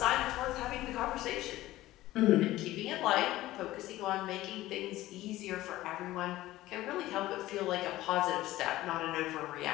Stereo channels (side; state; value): right; quieter; 16.3 dB